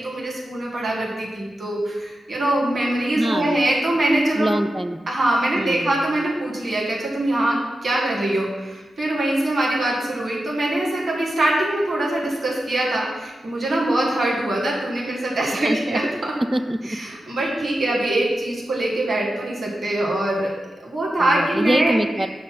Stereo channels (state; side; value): normal; both; correlation 0.91